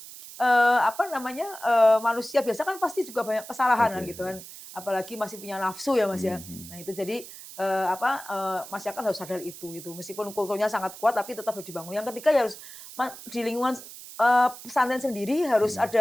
manusia biasa kan pasti juga banyak kesalahan kan gitu kan, apalagi masih punya nafsu ya Mas ya. Nah itu jadi masyarakat harus sadar itu gitu, meskipun kulturnya sangat kuat tapi tetap harus dibangun. Yang ketiga ya harus di lingkungan pesantren sendiri harus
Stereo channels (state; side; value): noise; right; hiss, 15 dB below the sound